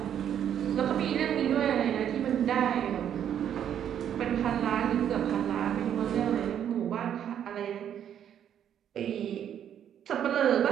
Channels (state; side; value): quieter; left; 9.6 dB